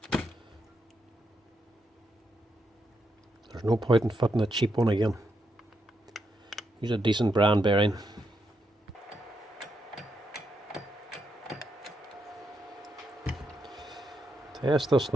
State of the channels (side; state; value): both; normal; correlation 0.81